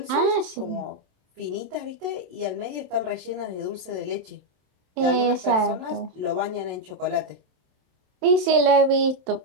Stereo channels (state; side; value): late; left; 27 ms